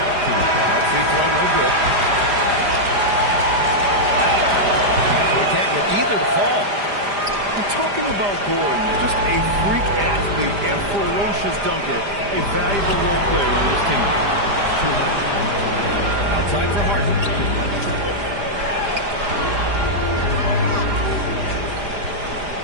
free throw, no good. So he can't get either to fall. We're talking about Gordon, just a freak athlete and ferocious dunker, a valuable role player on this team. Outside for Harden.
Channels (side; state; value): left; late; 5.0 ms